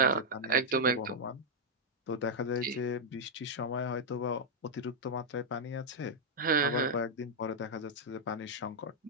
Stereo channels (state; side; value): normal; both; correlation -0.03